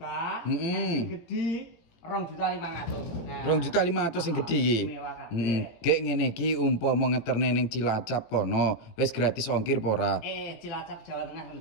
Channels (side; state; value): right; late; 18 ms